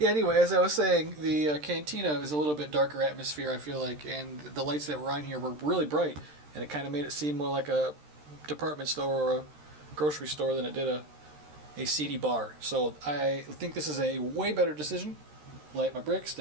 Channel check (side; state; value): left; late; 13 ms